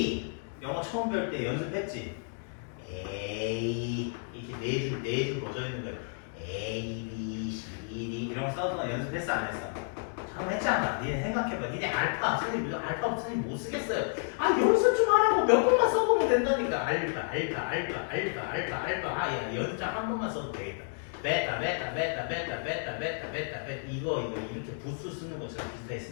영어 처음 배울 때 연습했지? A. 이렇게 네 줄 뻗어 있는 거야. A, B, C, D. 이런 거 써서 연습했어, 안 했어? 처음 했잖아. 니네 생각해봐. 니네 알파. 선생님, 알파부터 선생님 못 쓰겠어요. 아, 연습 좀 하라고. 몇 번만 써보면 된다니까. 알파. 아, 야, 연습장 한 번만 써도 되겠다. 베타 이거 이렇게 부수 쓰는 것처럼 비슷하게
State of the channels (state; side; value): silent; right; 57 dB below the other